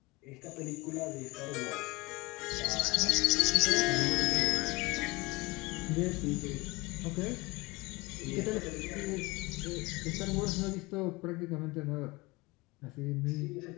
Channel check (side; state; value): right; quieter; 24.1 dB